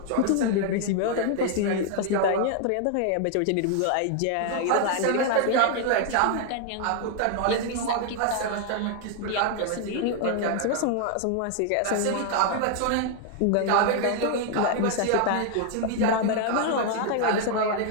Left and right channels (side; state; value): both; different; correlation 0.00